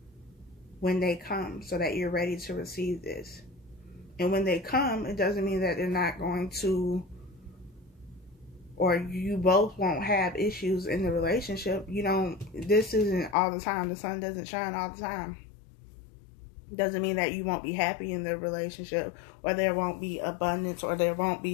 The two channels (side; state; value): right; drops out; at 13.4 s